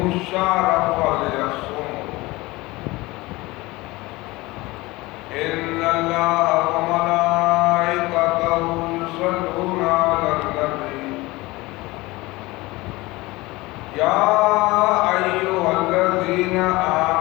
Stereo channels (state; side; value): quieter; right; 21.2 dB